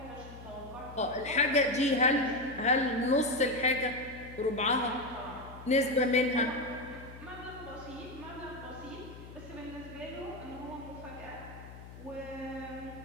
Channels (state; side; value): noise; left; hum, 15 dB below the sound